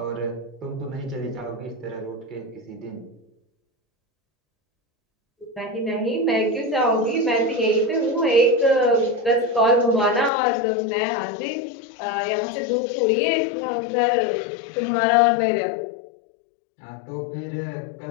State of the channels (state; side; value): drops out; right; at 10.3 s